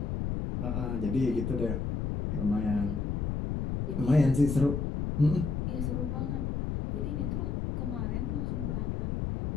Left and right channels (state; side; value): noise; left; rumble, 1 dB below the sound